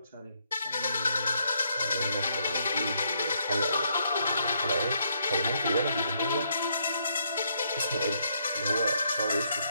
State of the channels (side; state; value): both; inverted; correlation -0.74